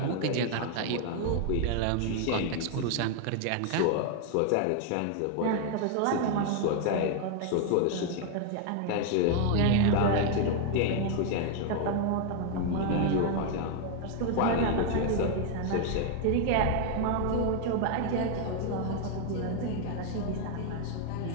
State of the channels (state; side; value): different; both; correlation 0.00